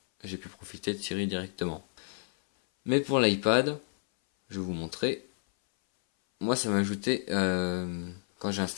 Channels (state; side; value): silent; right; 58 dB below the other